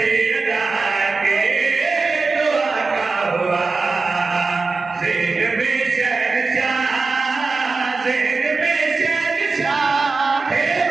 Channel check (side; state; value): left; quieter; 4.0 dB